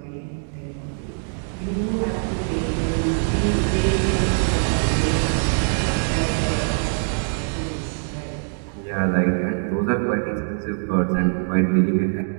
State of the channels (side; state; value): left; silent; 61 dB below the other